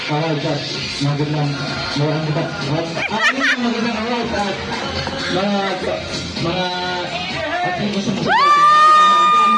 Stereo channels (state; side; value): identical; both; correlation 1.00